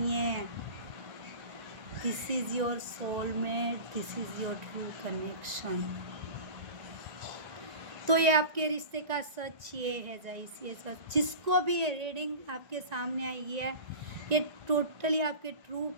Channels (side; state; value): left; late; 1.9 ms